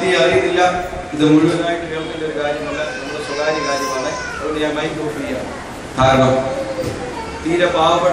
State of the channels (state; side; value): identical; both; correlation 1.00